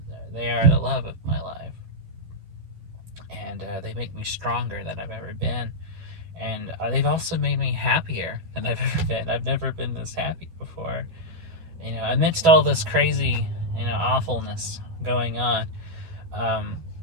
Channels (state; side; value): late; left; 12 ms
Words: they are the love of my life, and they make me stronger than I've ever been, and they've also made me happier than I've ever been. I've never been this happy before. Amidst all this crazy, awfulness going on, um,